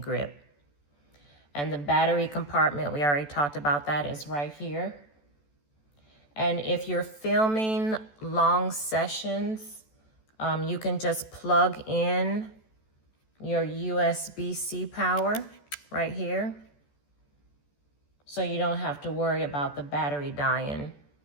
And the battery compartment, we already talked about that, is right here. And if you're filming long sessions, you can just plug in your USB-C power right here. So you don't have to worry about the battery dying,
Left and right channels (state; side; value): late; right; 14 ms